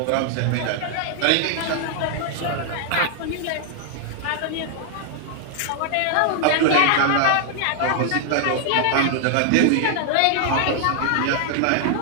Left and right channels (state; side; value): different; both; correlation 0.00